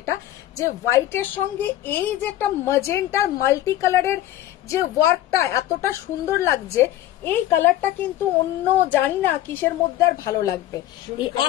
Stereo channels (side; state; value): right; quieter; 13.6 dB